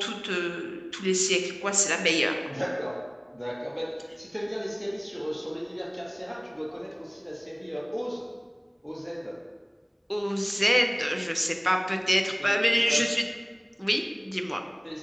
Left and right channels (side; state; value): both; identical; correlation 1.00